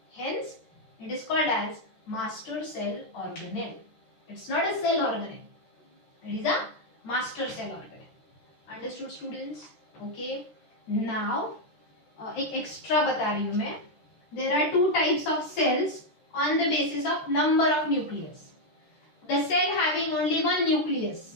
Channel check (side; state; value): right; late; 13 ms